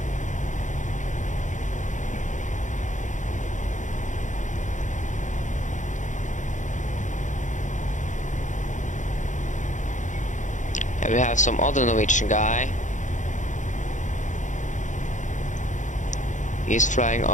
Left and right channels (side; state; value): right; late; 0.36 ms